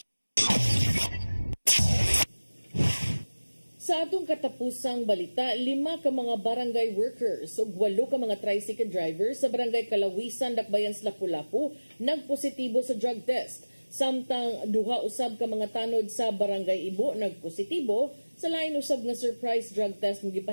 Sa atong katapusang balita, 5 ka mga barangay workers ug 8 ka mga tricycle drivers sa barangay Kalawisan, Dakbayan, Lapu-Lapu nagpositibo sa drug test. Samtang duha usab ka mga tanod sa barangay Ibo nagpositibo sa lain usab nga surprise drug test nga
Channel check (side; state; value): both; inverted; correlation -1.00